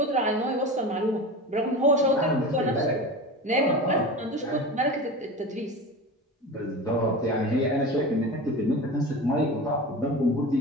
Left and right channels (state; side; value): normal; both; correlation 0.29